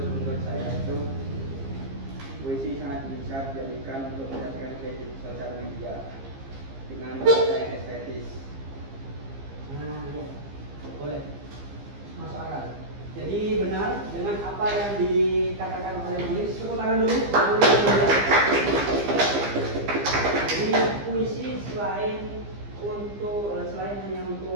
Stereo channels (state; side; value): late; left; 15 ms